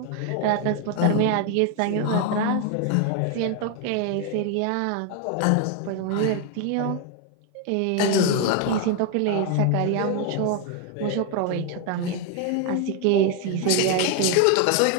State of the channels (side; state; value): both; different; correlation 0.01